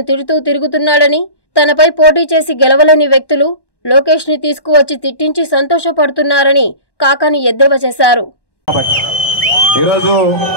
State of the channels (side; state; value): right; late; 1.1 ms